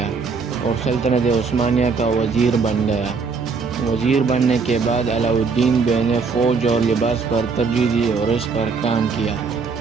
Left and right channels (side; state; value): left; quieter; 4.9 dB